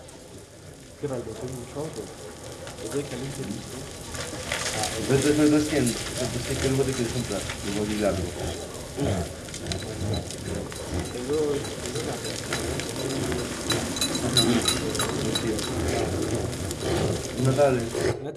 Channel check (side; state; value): both; identical; correlation 1.00